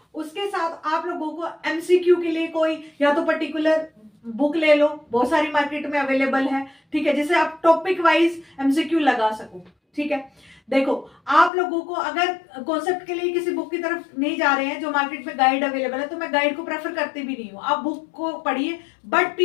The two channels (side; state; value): right; drops out; at 11.5 s